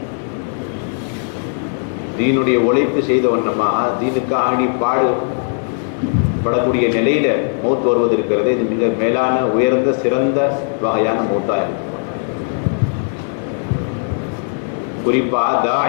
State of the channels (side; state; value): right; silent; digital silence